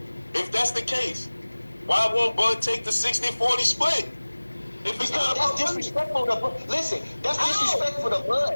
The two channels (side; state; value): both; inverted; correlation -1.00